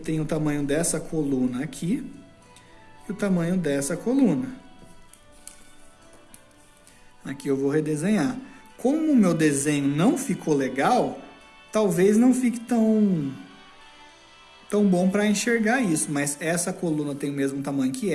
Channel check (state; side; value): identical; both; correlation 1.00